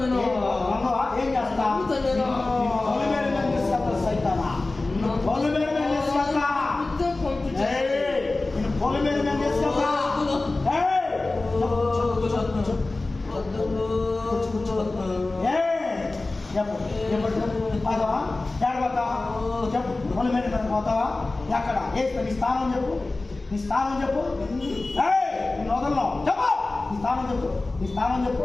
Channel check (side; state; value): right; quieter; 3.2 dB